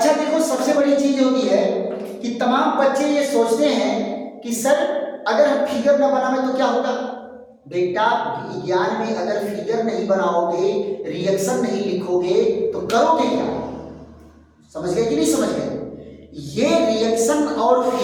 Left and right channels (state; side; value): identical; both; correlation 1.00